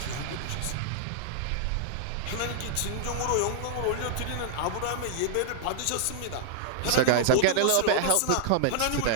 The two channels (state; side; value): different; both; correlation -0.01